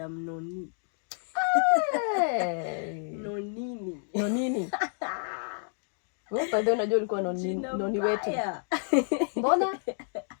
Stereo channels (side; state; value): right; silent; 58 dB below the other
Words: Noni. Hey. Nonini. Wewe bado unajua ulikuwa noni wetu. Mbona?